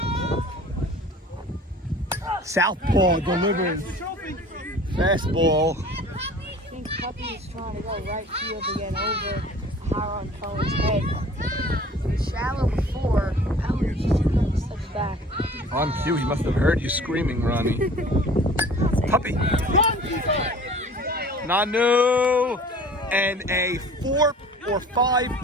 Southpaw delivers. Fastball. I think Puppy is trying to go right field again over Haron Cohen's head. It was shallow before. Pellet just steps back. On cue, he must have heard you screaming, Ronnie. Puppy. Nanu. And a 4 or 5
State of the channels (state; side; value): normal; both; correlation 0.47